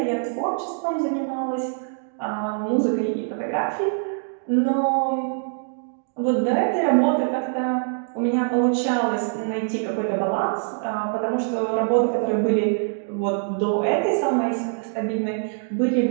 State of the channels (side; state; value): left; silent; digital silence